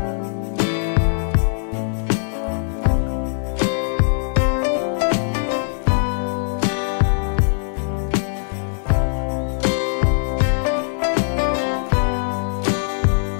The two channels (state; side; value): silent; right; digital silence